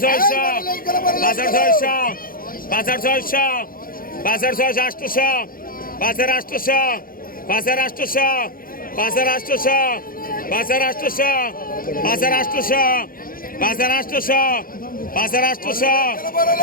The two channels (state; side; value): late; right; 0.42 ms